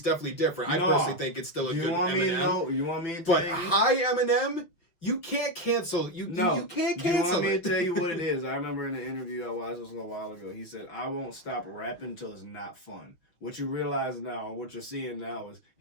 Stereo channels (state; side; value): late; right; 6.2 ms